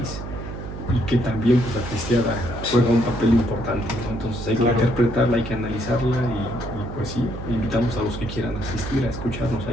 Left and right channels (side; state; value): right; noise; hum, 8 dB below the sound